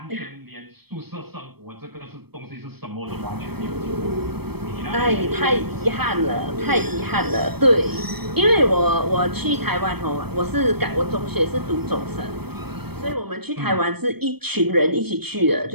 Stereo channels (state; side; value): late; left; 0.97 ms